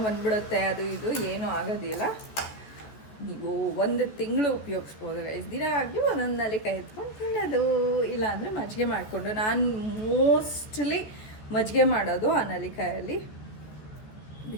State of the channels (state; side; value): late; right; 14 ms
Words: ಬಂದ್ಬಿಡುತ್ತೆ, ಅದು ಇದು ಏನೂ ಆಗೋದಿಲ್ಲ. ನೀವು 1 ತಿಂಗಳು ಉಪಯೋಗಿಸ್ಬೋದು ಗೈಸ್. ದಿನ ಆಗಲಿ ಒಂದೊಂದು ನಲ್ಲಿಕಾಯಿ ಎತ್ಕೊಂಡು ತಿನ್ನೋದು, ಇಲ್ಲಾಂದರೆ ಮಜ್ಜಿಗೆ ಮಾಡಿಕೊಂಡು. ನಾನು ಮೋಸ್ಟ್ಲಿ ಮಜ್ಜಿಗೆ ಮಾಡೋದು ಆ ನಲ್ಲಿಕಾಯಲ್ಲಿ,